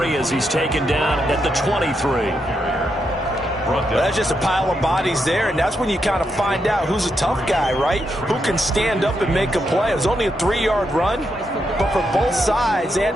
as he's taken down at the 23. Well, that's just a pile of bodies there, and that's when you kind of find out who's a tough guy, right? Who can stand up and make a play. It was only a 3-yard run, but for both sides, they had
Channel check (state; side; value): normal; both; correlation 0.82